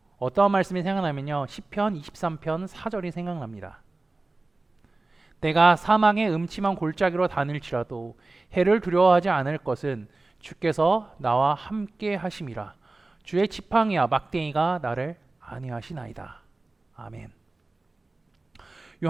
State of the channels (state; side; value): quieter; left; 3.2 dB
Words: 어떠한 말씀이 생각나면요, 시편 23편 4절이 생각납니다. 내가 사망의 음침한 골짜기로 다닐지라도 해를 두려워하지 않을 것은 주께서 나와 함께 하심이라. 주의 지팡이와 막대기가 나를 안위하시나이다. 아멘.